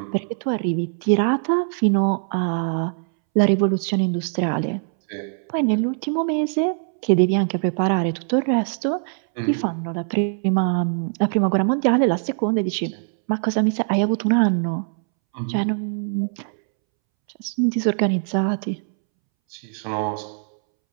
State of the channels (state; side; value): silent; left; 64 dB below the other